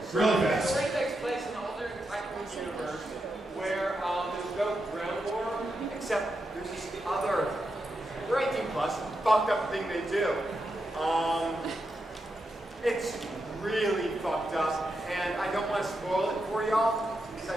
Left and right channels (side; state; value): both; normal; correlation 0.86